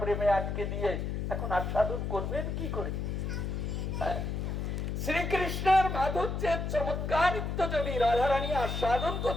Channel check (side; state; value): left; noise; hum, 2 dB below the sound